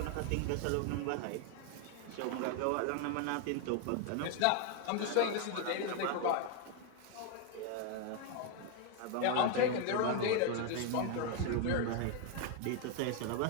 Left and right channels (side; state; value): both; different; correlation 0.01